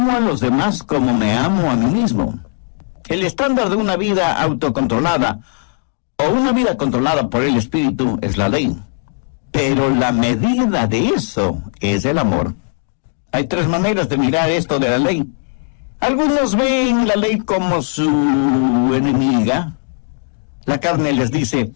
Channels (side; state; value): right; silent; 68 dB below the other